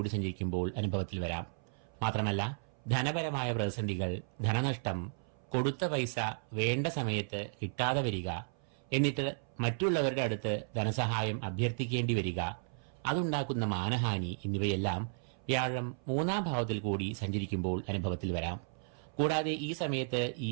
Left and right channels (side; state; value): left; silent; 55 dB below the other